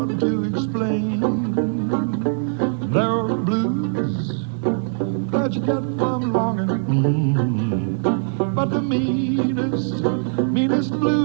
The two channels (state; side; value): silent; left; digital silence